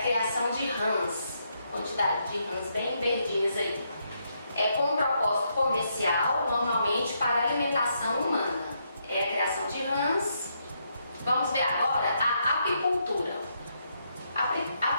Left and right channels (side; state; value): both; inverted; correlation -0.78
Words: criação de rãs, quantidade de rãs bem verdinhas aí. Com um propósito comercial, normalmente para alimentação humana. É a criação de rãs. Vamos ver agora a apicultura. A